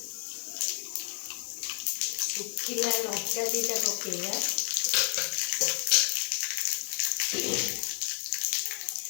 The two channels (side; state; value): right; quieter; 39.4 dB